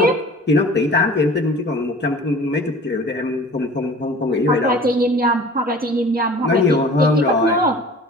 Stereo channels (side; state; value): both; normal; correlation 0.44